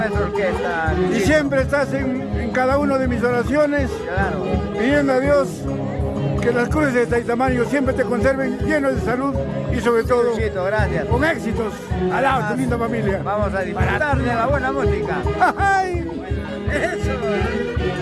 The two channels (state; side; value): identical; both; correlation 1.00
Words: orquesta. Y siempre estás en cada una de mis oraciones, Claro. pidiendo a Dios que las cruces de Taitamayo siempre te conserven llenos de salud y sobre todo Luchito, gracias. con éxitos. Al lado de tu linda familia. Vamos a disfrutar de la buena música. ¡Ay! Eso.